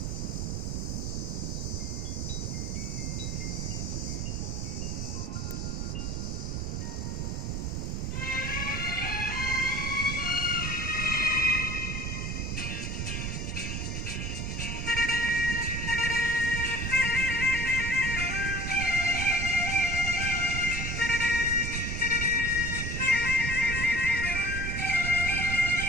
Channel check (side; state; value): right; noise; rumble, 2 dB below the sound